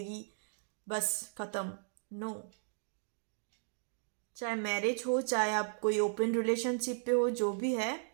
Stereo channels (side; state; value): left; silent; digital silence